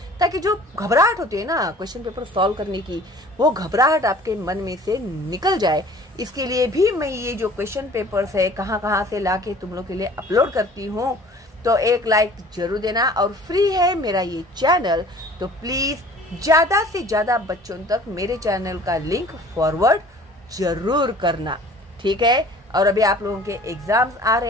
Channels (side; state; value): both; normal; correlation 0.49